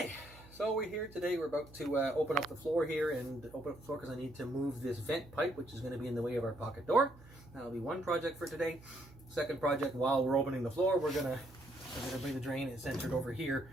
so we're here today. We're about to open up the floor here and open up the floor because I need to move this vent pipe, which is going to be in the way of our pocket door. That'll be one project for today. Second project, while we're opening the floor, we're gonna bring the drain and centered over here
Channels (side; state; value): right; noise; hum, 21 dB below the sound